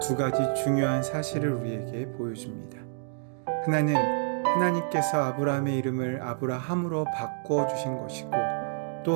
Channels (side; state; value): left; silent; digital silence